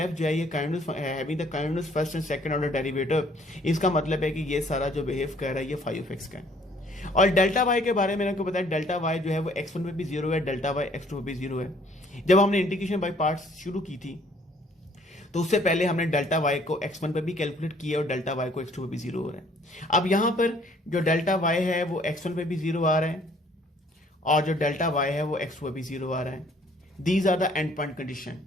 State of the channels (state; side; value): normal; both; correlation 0.60